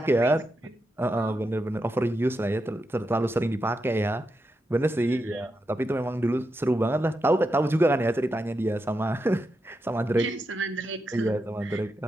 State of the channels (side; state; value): both; normal; correlation 0.86